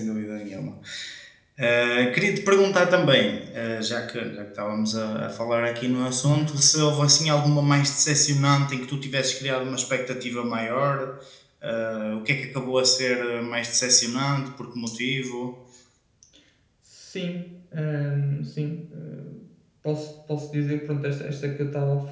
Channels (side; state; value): both; identical; correlation 1.00